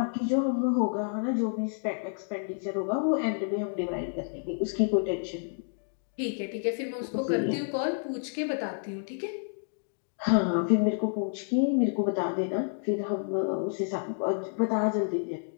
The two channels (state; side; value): silent; right; digital silence